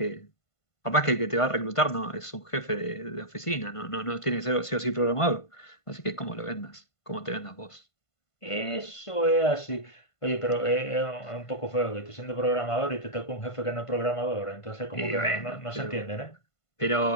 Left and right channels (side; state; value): right; late; 1.5 ms